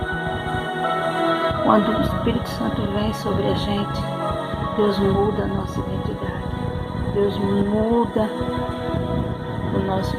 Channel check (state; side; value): identical; both; correlation 1.00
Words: Quando o Espírito Santo vem sobre a gente, Deus muda a nossa identidade. Deus muda o nosso